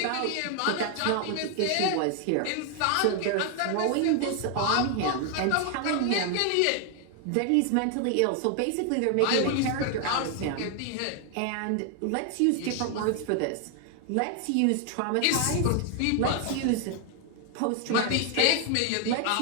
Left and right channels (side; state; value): both; different; correlation 0.00